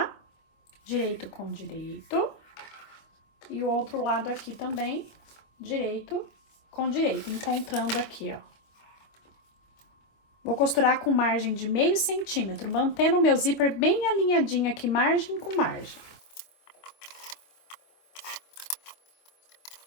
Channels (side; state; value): right; late; 25 ms